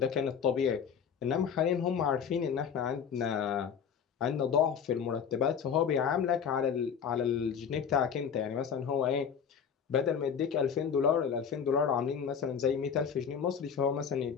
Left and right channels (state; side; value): quieter; right; 7.3 dB